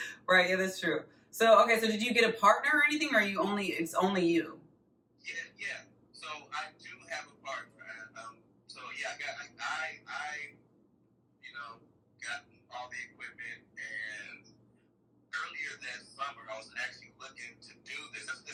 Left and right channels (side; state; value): both; identical; correlation 1.00